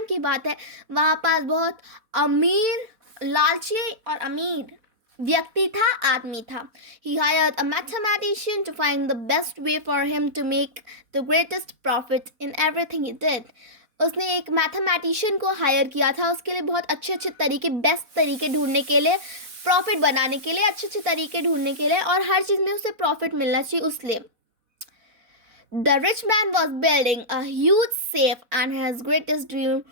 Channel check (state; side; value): late; left; 4.1 ms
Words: की बात है. वहाँ पास बहुत अमीर, लालची और अमीर व्यक्ति था, आदमी था. He hired a mathematician to find the best way for him to make the greatest profit in everything he did. उसने एक मैथमेटिशियन को हायर किया था उसके लिए बहुत अच्छे अच्छे तरीके, बेस्ट तरीके ढूंढने के लिए, प्रॉफिट बनाने के लिए, अच्छे अच्छे तरीके ढूंढने के लिए, और हर चीज़ में उसे प्रॉफिट मिलना चाहिए उसलिए. The rich man was building a huge safe and his greatest dream